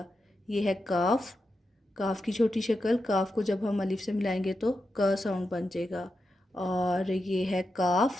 ये है काफ की छोटी शक्ल। काफ को जब हम अलिफ से मिलाएंगे तो क साउंड बन जाएगा। और ये है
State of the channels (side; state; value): both; normal; correlation 0.88